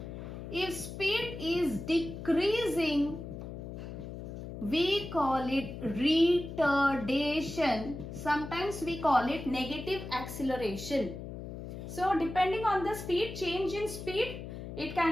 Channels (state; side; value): noise; left; hum, 9 dB below the sound